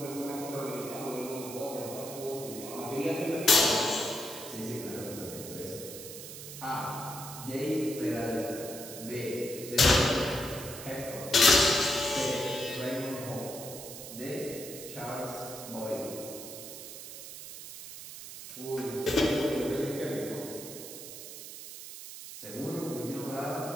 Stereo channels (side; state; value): right; noise; hiss, 11 dB below the sound